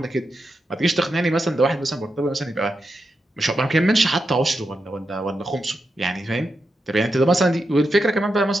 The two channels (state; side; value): normal; both; correlation 0.87